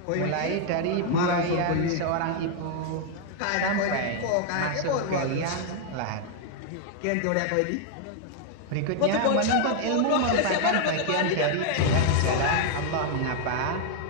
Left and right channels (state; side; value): different; both; correlation 0.00